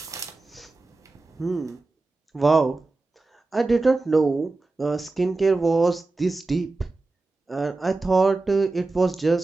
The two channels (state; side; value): quieter; left; 3.4 dB